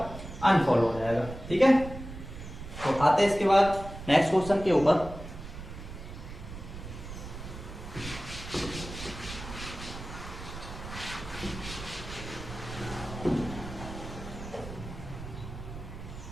अनफॉलो हो जाएगा। ठीक है, तो आते हैं इसके बाद नेक्स्ट क्वेश्चन के ऊपर।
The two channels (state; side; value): noise; right; rumble, 11 dB below the sound